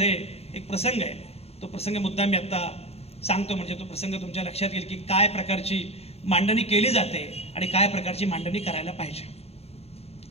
एक प्रसंग आहे. तो प्रसंग मुद्दा मी आत्ता सांगतो, म्हणजे तो प्रसंग तुमच्या लक्षात येईल की काय प्रकारची मांडणी केली जाते आणि काय प्रकारची मांडणी करायला पाहिजे.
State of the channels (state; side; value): late; right; 0.30 ms